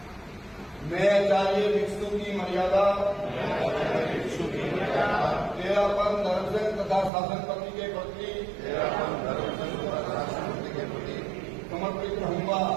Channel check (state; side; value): drops out; left; at 7.1 s